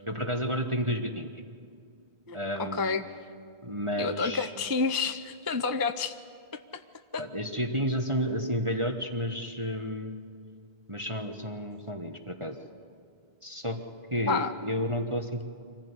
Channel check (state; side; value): late; left; 1.0 ms